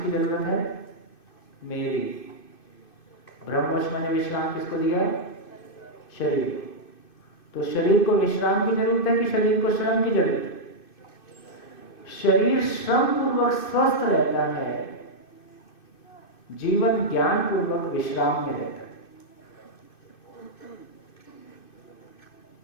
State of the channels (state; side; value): late; right; 2.6 ms